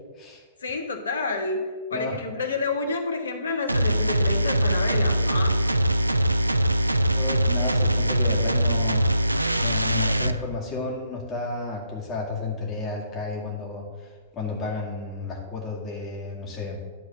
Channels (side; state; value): both; inverted; correlation -0.75